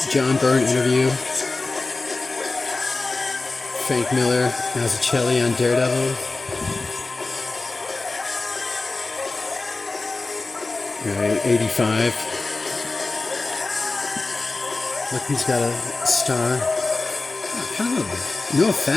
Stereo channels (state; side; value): quieter; right; 3.5 dB